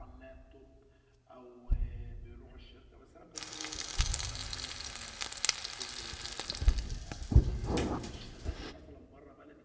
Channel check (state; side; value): identical; both; correlation 1.00